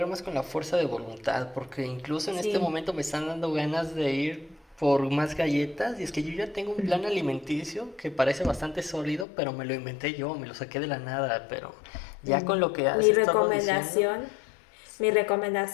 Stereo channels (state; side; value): drops out; right; at 9.2 s